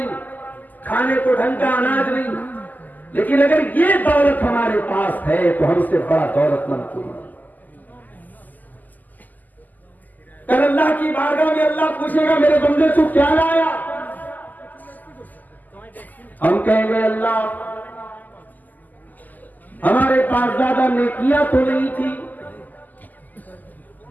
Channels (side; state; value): right; late; 0.083 ms